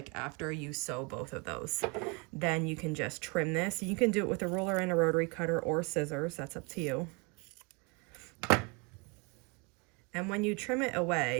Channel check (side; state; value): left; quieter; 31.0 dB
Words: after you sew both of those. Then you can just trim this. You can do it with a ruler and a rotary cutter or scissors. That's up to you. And when you trim it